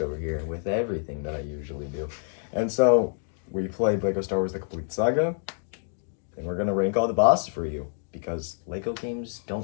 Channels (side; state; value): right; silent; 60 dB below the other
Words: over here with everything that I usually do. And so we played Lego Star Wars The Complete Saga, and we're gonna rank all the bosses for you because Lego games